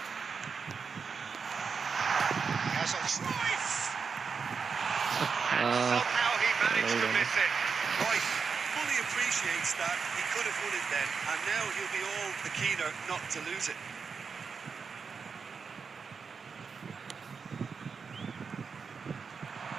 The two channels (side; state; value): left; quieter; 5.5 dB